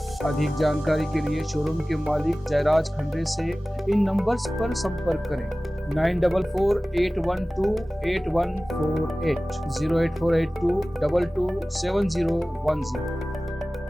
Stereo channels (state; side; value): normal; both; correlation 0.97